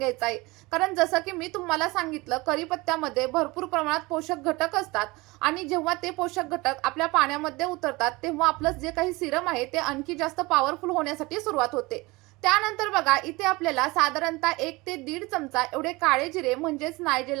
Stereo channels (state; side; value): quieter; left; 23.0 dB